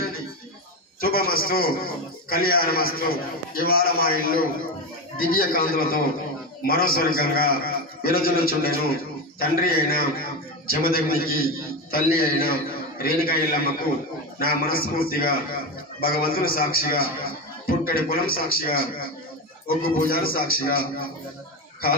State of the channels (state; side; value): normal; both; correlation 0.16